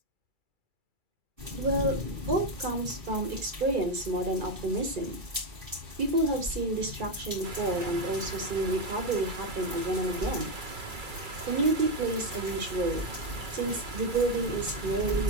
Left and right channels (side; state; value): left; late; 2.3 ms